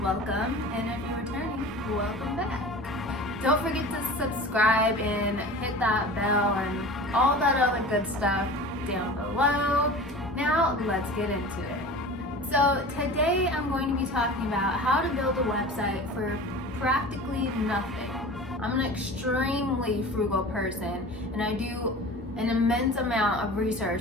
welcome, and if you're returning, welcome back. Don't forget to subscribe and hit that bell and all that other good stuff down below. Now let's get into it. So today I'm going to be talking about how to build a website for practically nothing. I'm an extremely frugal person, and I do an immense amount of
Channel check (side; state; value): both; normal; correlation 0.37